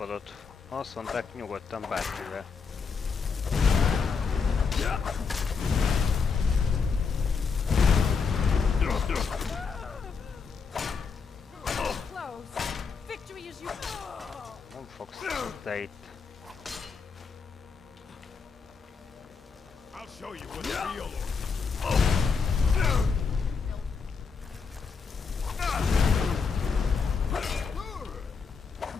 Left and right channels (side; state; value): right; quieter; 5.4 dB